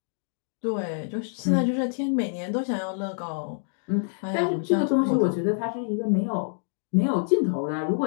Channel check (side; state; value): right; silent; digital silence